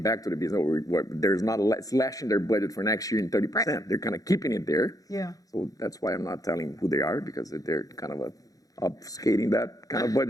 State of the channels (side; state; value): right; late; 0.17 ms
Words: back to the business, there's not slashing their budget for next year in 30%. Right. They're kind of keeping it there. Yeah. So that's why I'm not telling who they are, because they're kind of obfuscating that kind of